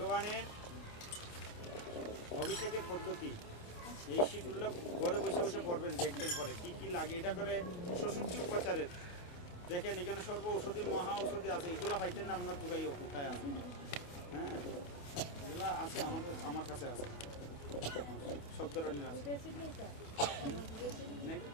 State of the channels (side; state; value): right; late; 28 ms